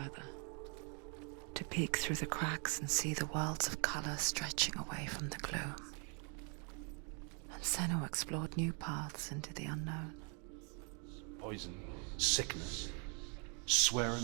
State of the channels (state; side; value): quieter; left; 37.3 dB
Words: To peek through the cracks and see the worlds of color stretching away from the gloom. And Senua explored new paths into the unknown. Poison, sickness, swear an